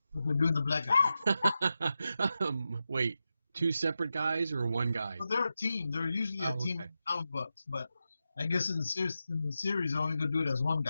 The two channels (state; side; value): inverted; both; correlation -0.90